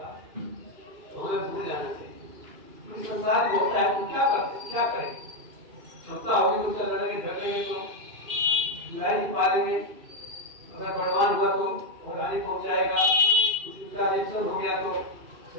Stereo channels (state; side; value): late; left; 3.0 ms